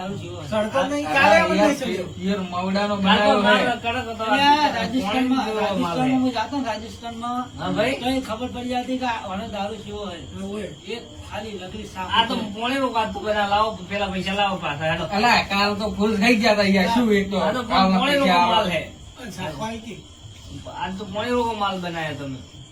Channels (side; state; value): both; identical; correlation 1.00